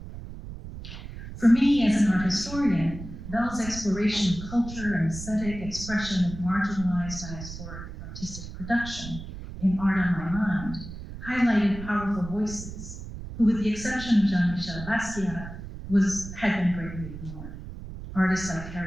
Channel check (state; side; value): noise; right; rumble, 11 dB below the sound